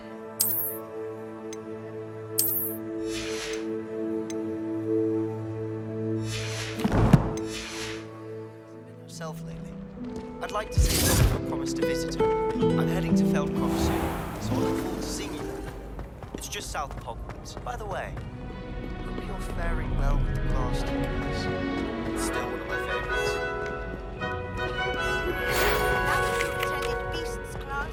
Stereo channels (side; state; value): both; identical; correlation 1.00